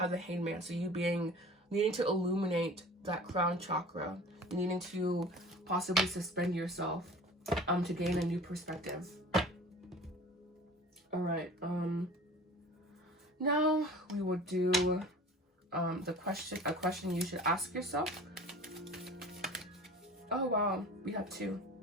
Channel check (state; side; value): normal; both; correlation 0.42